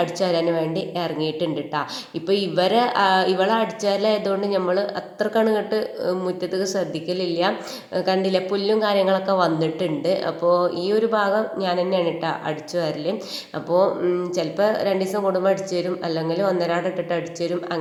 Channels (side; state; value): both; identical; correlation 1.00